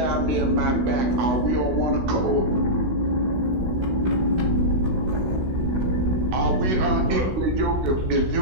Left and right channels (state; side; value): late; left; 16 ms